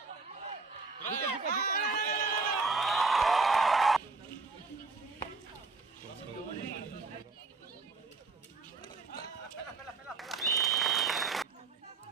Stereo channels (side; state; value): left; quieter; 4.0 dB